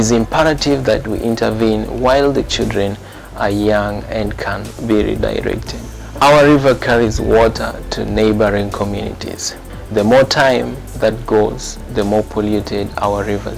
imperative that we intervene while the children are young and can be redirected. Our river carries water to neighboring communities. The more time that goes, the more polluted our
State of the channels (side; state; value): both; identical; correlation 1.00